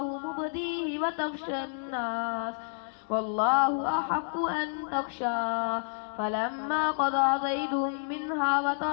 مبديه وتخشى الناس والله أحق أن تخشى فلما قضى زيد منها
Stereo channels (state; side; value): silent; right; digital silence